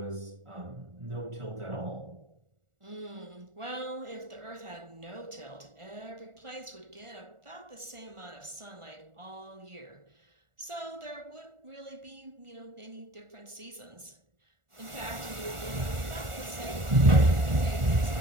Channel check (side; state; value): left; late; 1.4 ms